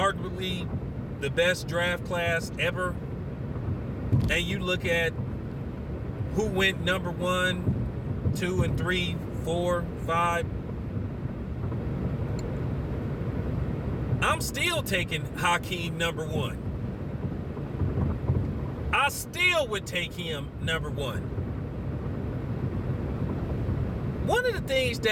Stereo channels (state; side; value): identical; both; correlation 1.00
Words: the best draft class ever, and you look at who went number 1, 2, and 3, 4, 5, I'm still taking Hakeem number 1. I still would take him number 1. One of the things